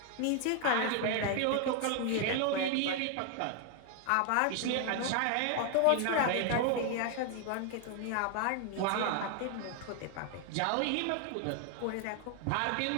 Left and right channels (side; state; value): both; different; correlation 0.00